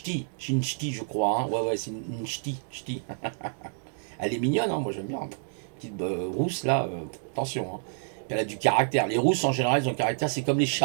je crois. Hein. Ouais, ouais, c'est une ch'ti, ch'ti. Elle est mignonne, hein, moi j'aime bien. Petite rousse là, attention. Hein. Elle a du caractère. Les rousses en général, ils ont du caractère. C'est comme les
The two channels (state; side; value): silent; left; digital silence